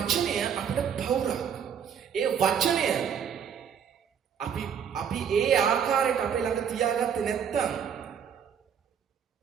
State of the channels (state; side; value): quieter; left; 7.8 dB